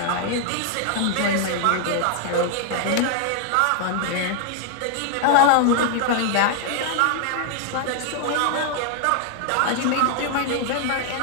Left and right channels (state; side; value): different; both; correlation 0.00